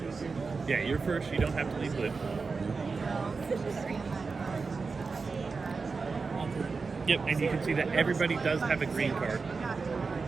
Yeah, you're first. You don't have to leave blue. Yep, and you can see that everybody does have a green card,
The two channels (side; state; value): left; quieter; 4.5 dB